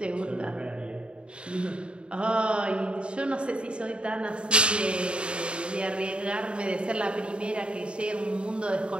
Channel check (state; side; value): late; left; 0.055 ms